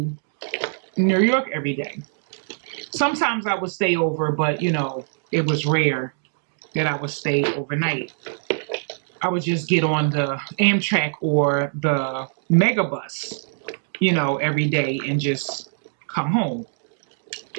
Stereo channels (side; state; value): left; silent; digital silence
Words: New York every day. Sometimes I would stay over, but it was rare that I would stay overnight. I would just get on the Amtrak or the Megabus, every day and just come home.